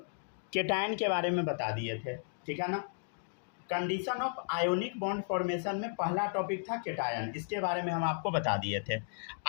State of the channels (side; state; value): right; silent; 55 dB below the other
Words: केटायन के बारे में बता दिए थे, ठीक है ना। Condition of ionic bond formation में पहला टॉपिक था केटायन, इसके बारे में हम आपको बता दिए थे।